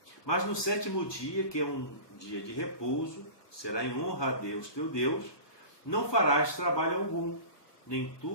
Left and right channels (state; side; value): late; right; 1.2 ms